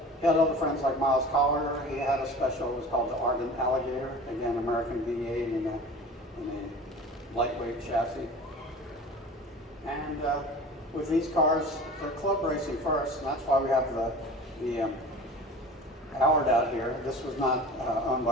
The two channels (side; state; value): both; normal; correlation 0.39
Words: He had other friends like Miles Collier. He had a special, it was called the Ardent Alligator, again, American V8 in a lightweight chassis. And with these cars, they're club racing first, and that's why we have the Howard out here. This was not owned